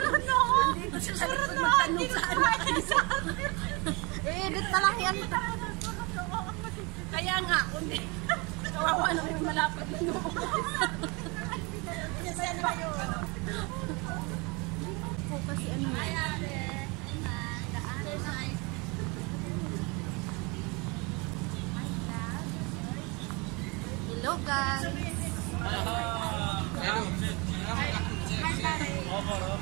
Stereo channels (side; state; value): left; quieter; 28.4 dB